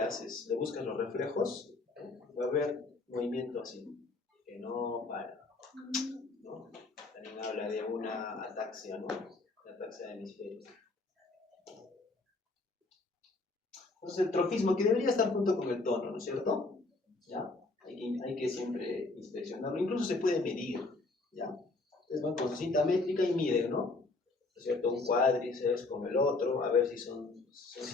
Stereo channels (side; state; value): right; quieter; 3.4 dB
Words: buscas los reflejos, va a haber movimiento así, que no para, ¿no? También habla de una ataxia, ¿no? La ataxia de hemisferio. Entonces el trofismo, que debería estar junto con el tono, ¿no es cierto? ¿Ya? Hay que siempre inspeccionarlo, incluso se puede medir, ¿ya? Entonces van con su cinta métrica y miden, ¿no? ¿No es cierto? Un cuádriceps con el otro, a ver si son